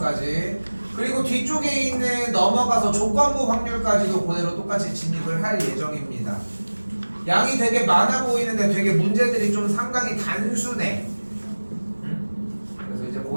그리고 뒤쪽에 있는 넘어가서 조건부 확률까지도 그대로 똑같이 진입을 할 예정입니다. 양이 되게 많아 보이는데 되게 문제들이 좀 상당히 단순해. 그래서 이제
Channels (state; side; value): inverted; both; correlation -1.00